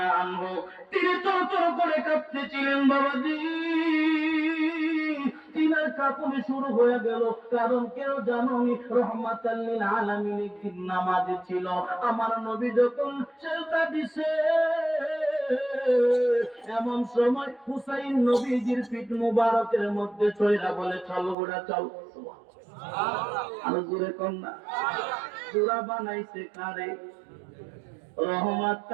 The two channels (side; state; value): left; drops out; at 21.4 s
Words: আনহু, তিনি থরথর করে কাঁপতেছিলেন। বাবাজি, তিনার কাঁপুনি শুরু হয়ে গেল। কারণ কেউ জানোনি, রহমাতাল লিল আলামিন একদিন নামাজে ছিল। আমার নবী যখন সেজদা দিছে, এমন সময় হুসাইন নবীজির পিঠ মুবারকের মধ্যে চইরা বলে, চল গোড়া চল। আর জোরে কন্যা সূরা বানাইছে কারে?